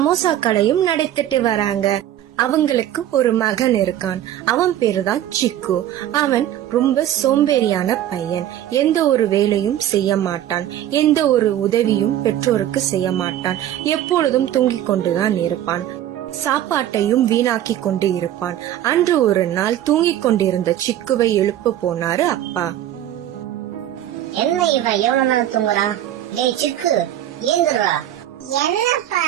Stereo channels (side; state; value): left; quieter; 12.0 dB